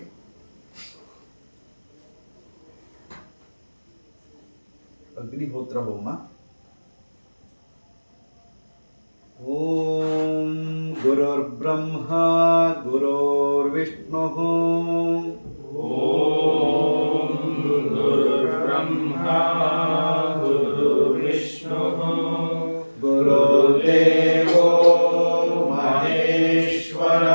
ಅಗ್ನಿಹೋತ್ರ ಹೋಮ. ಓಂ ಗುರುರ್ಬ್ರಹ್ಮ ಗುರುರ್ವಿಷ್ಣು ಓಂ ಗುರುರ್ಬ್ರಹ್ಮ ಗುರುರ್ವಿಷ್ಣು ಗುರುದೇವೋ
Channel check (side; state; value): both; inverted; correlation -1.00